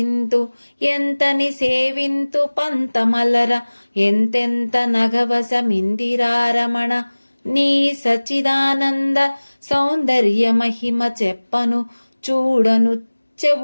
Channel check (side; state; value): both; inverted; correlation -1.00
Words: ఎంతని సేవింతు పంతమలర ఎంతెంత నగవసమిందిరారమణ నీ సచ్చిదానంద సౌందర్య మహిమ చెప్పను చూడను